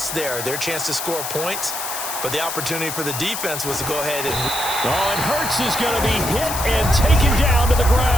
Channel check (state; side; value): noise; left; hiss, 5 dB below the sound